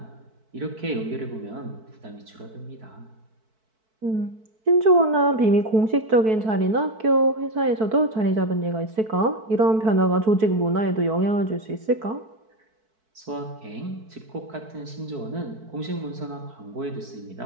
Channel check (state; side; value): late; left; 4.6 ms